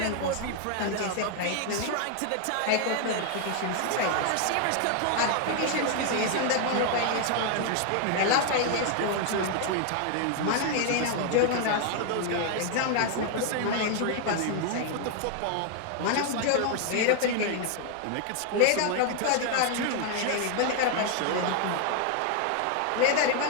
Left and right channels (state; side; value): different; both; correlation 0.00